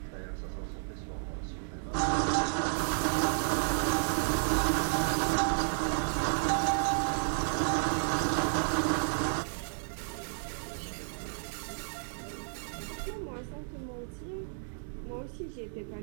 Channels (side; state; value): left; silent; digital silence